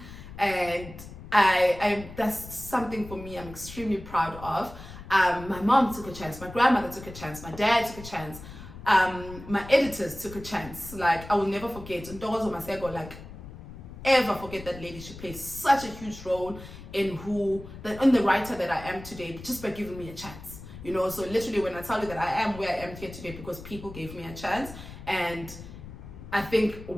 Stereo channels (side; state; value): left; noise; rumble, 14 dB below the sound